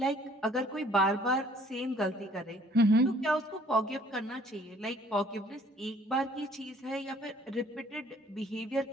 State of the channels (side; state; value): both; normal; correlation 0.59